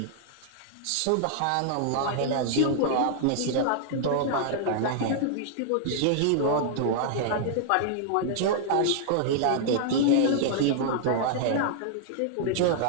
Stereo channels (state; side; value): different; both; correlation -0.01